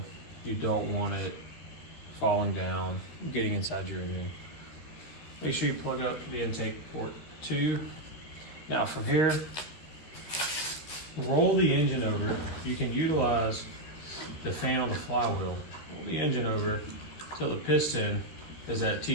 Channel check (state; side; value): late; right; 13 ms